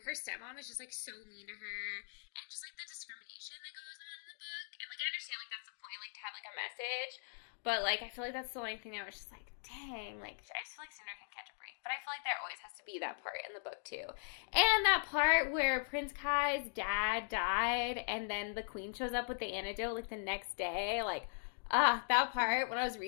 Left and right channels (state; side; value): silent; right; digital silence